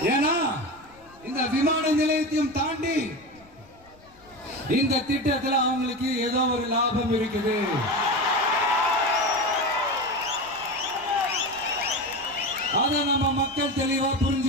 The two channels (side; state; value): left; noise; rumble, 27 dB below the sound